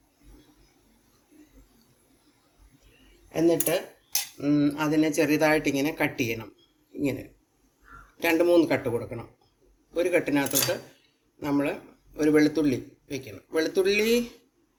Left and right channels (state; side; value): identical; both; correlation 1.00